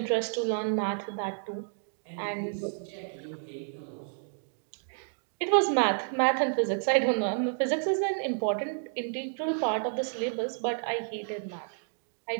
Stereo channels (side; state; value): left; silent; digital silence